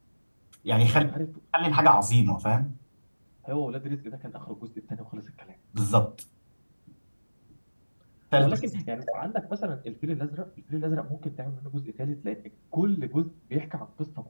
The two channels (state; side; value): inverted; both; correlation -1.00